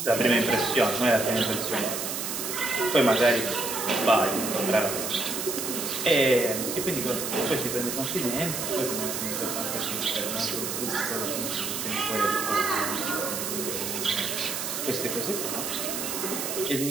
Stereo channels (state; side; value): noise; right; hiss, 3 dB below the sound